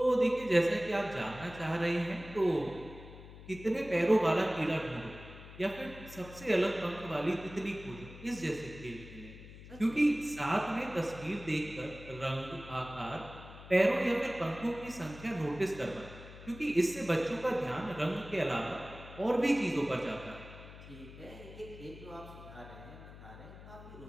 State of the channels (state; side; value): noise; left; hum, 16 dB below the sound